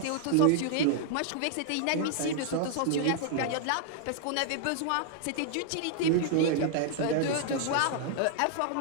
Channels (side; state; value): both; different; correlation -0.01